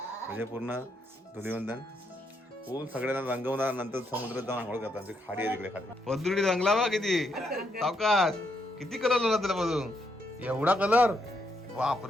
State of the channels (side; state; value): both; normal; correlation 0.78